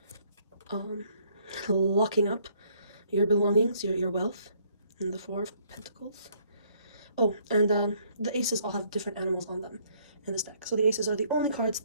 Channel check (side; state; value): both; inverted; correlation -0.65